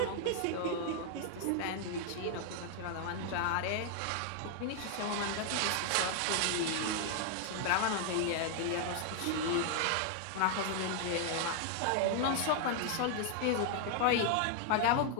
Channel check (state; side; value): different; both; correlation 0.00